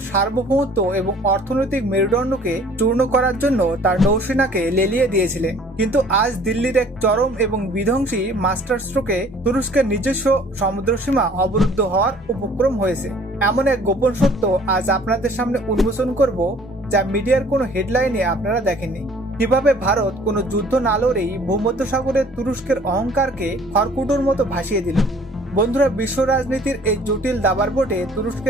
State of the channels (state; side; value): normal; both; correlation 0.54